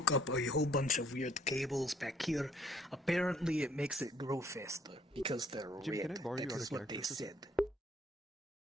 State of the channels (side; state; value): both; normal; correlation 0.62